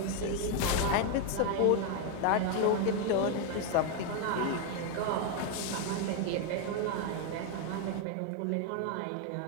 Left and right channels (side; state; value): both; different; correlation 0.01